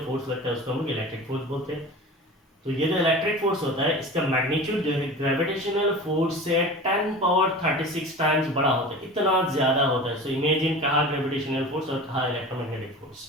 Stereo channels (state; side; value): normal; both; correlation 0.35